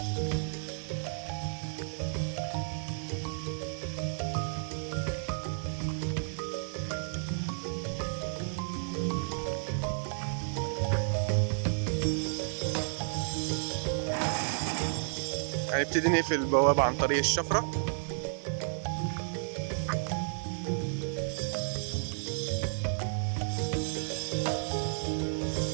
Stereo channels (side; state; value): left; silent; 56 dB below the other